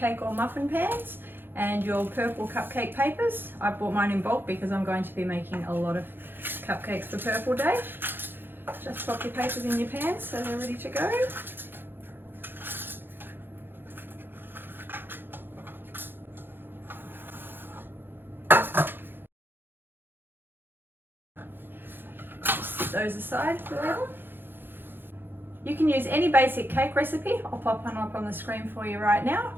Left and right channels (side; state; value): left; late; 0.10 ms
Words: or muffin pans and your purple cupcake papers. I bought mine in bulk because I'm going to be making a lot of cupcakes for Purple Day. Just pop your papers in your pans so they're ready to go. Those aside for now. You can use any basic cake recipe. I'll pop one up on the screen for you right now.